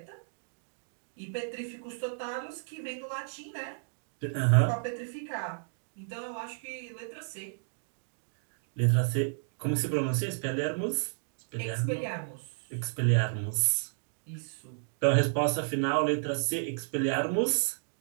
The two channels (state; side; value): silent; left; digital silence